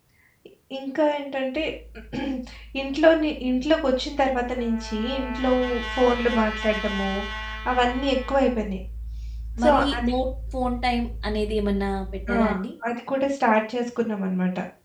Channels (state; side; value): identical; both; correlation 1.00